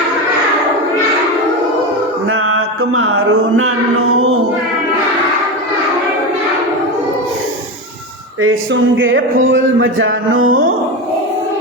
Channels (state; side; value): normal; both; correlation 0.19